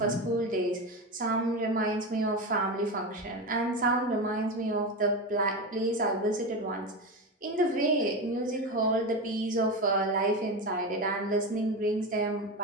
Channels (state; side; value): normal; both; correlation 0.20